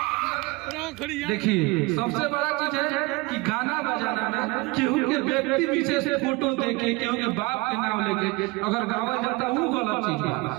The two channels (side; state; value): left; quieter; 25.0 dB